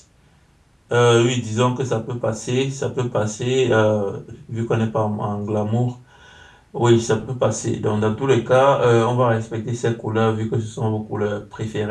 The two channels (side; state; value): both; identical; correlation 1.00